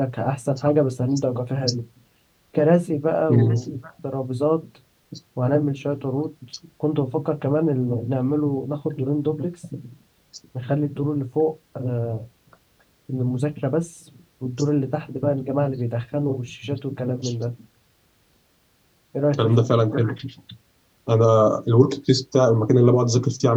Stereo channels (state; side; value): identical; both; correlation 1.00